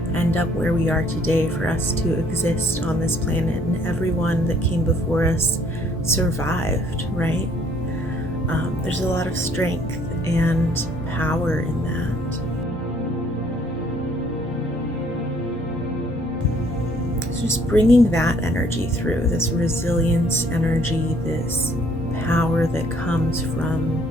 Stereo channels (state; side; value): normal; both; correlation 0.62